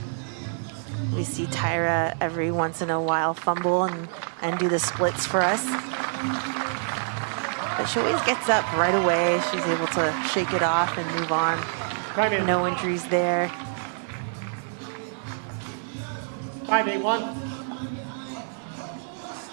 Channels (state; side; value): silent; left; digital silence